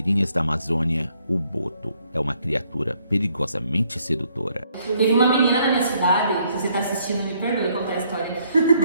da Amazônia, o boto é uma criatura perigosamente sedutora. Teve uma menina na minha cidade, se você tá assistindo, me perdoe contar a história,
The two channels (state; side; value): inverted; both; correlation -0.69